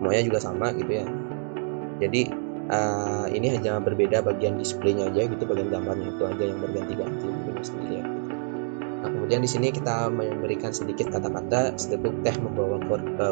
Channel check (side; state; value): left; silent; digital silence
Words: juga sama gitu ya. Jadi ini hanya berbeda bagian displaynya aja gitu, bagian gambarnya itu aja yang berganti-ganti sendiri ya. Nah, kemudian di sini kita memberikan sedikit kata-kata, seteguk teh membawa